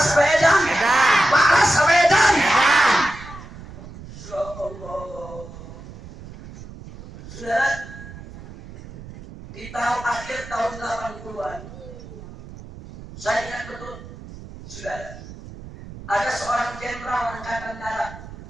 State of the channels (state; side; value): noise; right; rumble, 15 dB below the sound